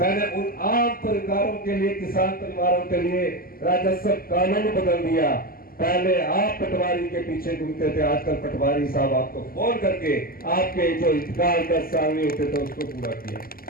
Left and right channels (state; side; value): late; right; 0.42 ms